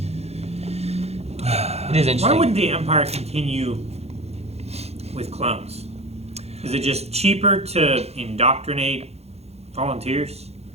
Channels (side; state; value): left; late; 0.31 ms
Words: It is interesting. Why wouldn't the Empire continue with clones? Is it just cheaper to indoctrinate volunteers?